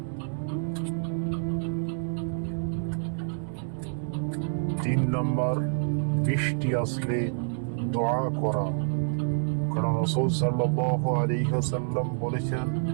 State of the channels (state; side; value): silent; left; digital silence